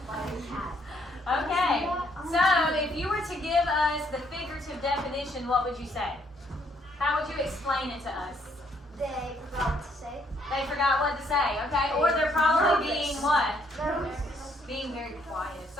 By a cat. Okay. So if you were to give us the figurative definition, what would you say? How would you explain it to us? They forgot what to say. They forgot what to say, okay? Or they're probably being what? Nervous. Being very quiet. If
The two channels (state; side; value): normal; both; correlation 0.69